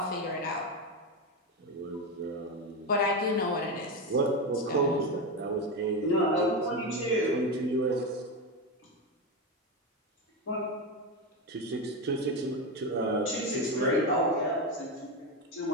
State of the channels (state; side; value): normal; both; correlation 0.14